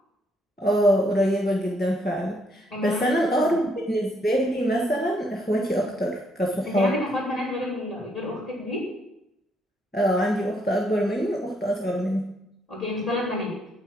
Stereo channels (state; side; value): normal; both; correlation 0.72